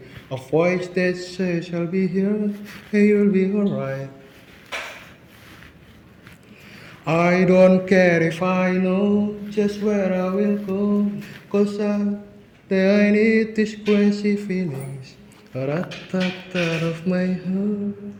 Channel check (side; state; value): both; identical; correlation 1.00